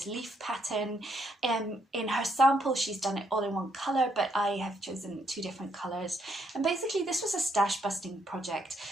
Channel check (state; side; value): normal; both; correlation 0.73